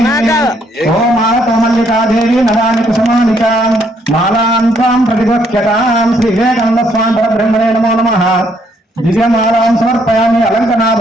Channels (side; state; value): both; normal; correlation 0.70